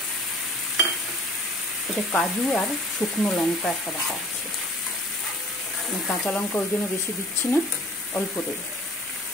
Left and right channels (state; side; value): normal; both; correlation 0.49